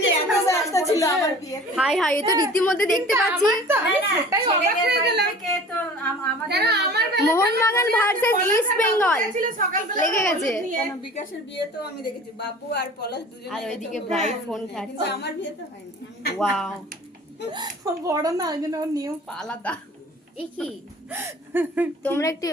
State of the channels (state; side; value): normal; both; correlation 0.44